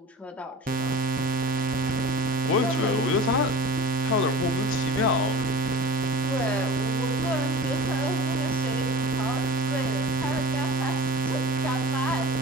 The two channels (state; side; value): normal; both; correlation 0.37